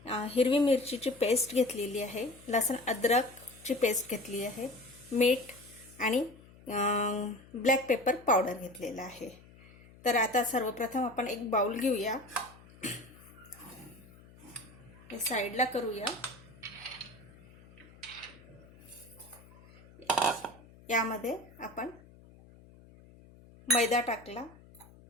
हिरवी मिरचीची पेस्ट घेतलेली आहे, लसूण अद्रकची पेस्ट घेतली आहे, मीठ आणि ब्लॅक पेपर पावडर घेतलेला आहे। तर आता सर्वप्रथम आपण एक बाउल घेऊया, हे साईडला करूया। यामध्ये आपण मैदा टाकला,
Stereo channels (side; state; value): left; noise; hum, 23 dB below the sound